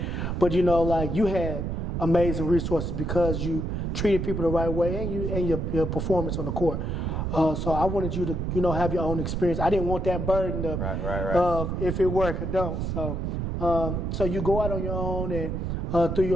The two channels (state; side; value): noise; right; rumble, 2 dB below the sound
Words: But like you had amazing resources because you treated people the right way and your performance on the court. So I wanted you to, have your own experience. I didn't want that burden of if it work or don't. So you go out on your own and through